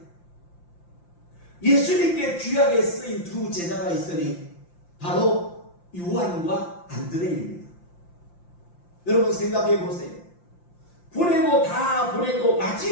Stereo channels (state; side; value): late; right; 5.8 ms